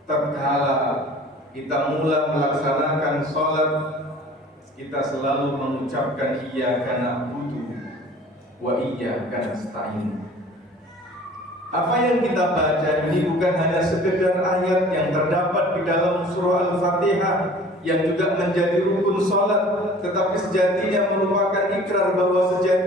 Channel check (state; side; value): normal; both; correlation 0.47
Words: Tatkala kita mulai melaksanakan sholat, kita selalu mengucapkan iyyaka na'budu wa iyyaka nasta'in. Apa yang kita baca ini bukan hanya sekedar ayat yang terdapat di dalam surah Al-Fatihah yang juga menjadi rukun sholat, tetapi sejatinya merupakan ikrar bahwa